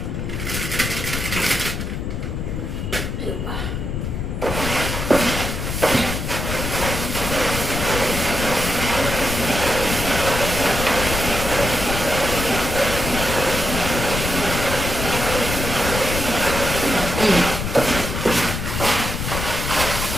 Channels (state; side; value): noise; left; rumble, 4 dB below the sound